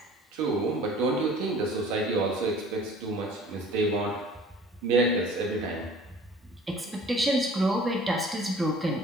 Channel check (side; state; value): both; normal; correlation 0.48